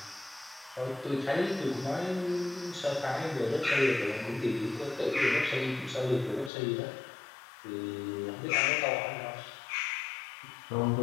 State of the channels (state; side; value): drops out; right; at 6.5 s